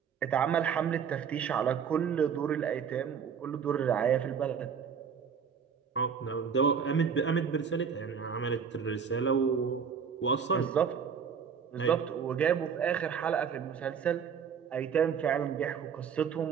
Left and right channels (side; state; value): left; quieter; 6.9 dB